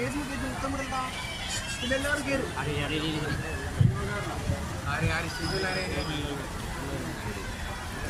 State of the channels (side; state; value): both; identical; correlation 1.00